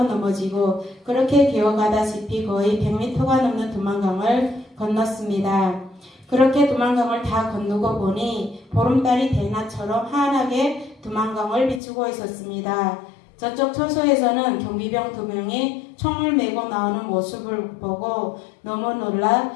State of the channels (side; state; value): right; drops out; at 11.8 s